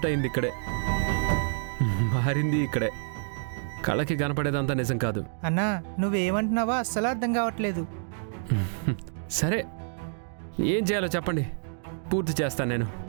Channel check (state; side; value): silent; left; digital silence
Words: అయింది ఇక్కడే, మారింది ఇక్కడే. కళకి కనపడేదంతా నిజం కాదు. అన్నా, నువ్వేమంటున్నావో అస్సలు అర్థం కావట్లేదు. సరే, ఏం చేయాలో చెప్పండి, పూర్తి చేస్తాను నేను.